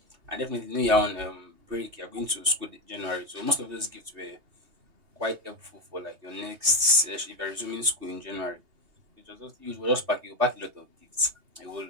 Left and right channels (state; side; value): late; left; 2.7 ms